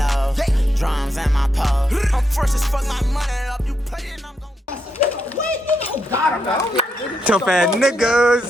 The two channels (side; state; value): both; normal; correlation 0.81